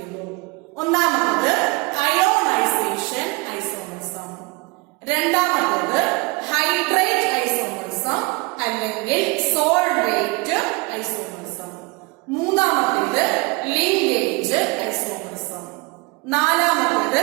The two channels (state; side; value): quieter; left; 26.6 dB